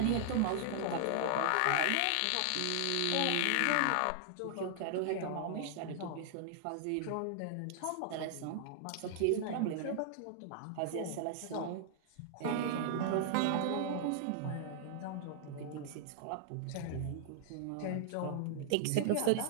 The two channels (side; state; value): both; different; correlation -0.01